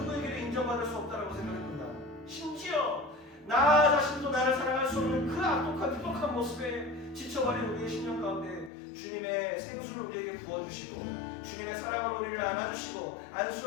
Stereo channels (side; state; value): right; drops out; at 8.7 s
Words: 인정받을 수 없다고 생각했습니다. 심지어 나 자신도 나를 사랑할 수 없는 그 악독한 모습에 지쳐버린 우리의 심령 가운데 주님의 생수를 우리에게 부어주시고 주님의 사랑으로 우리를 안아주시고